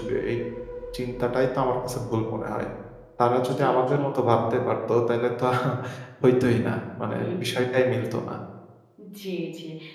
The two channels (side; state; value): both; identical; correlation 1.00